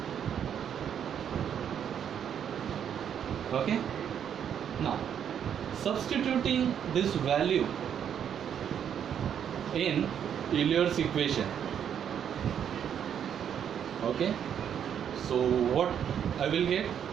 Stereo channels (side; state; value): left; quieter; 8.8 dB